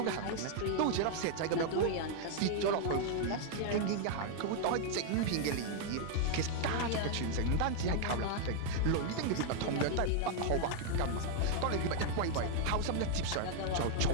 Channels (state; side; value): different; both; correlation 0.00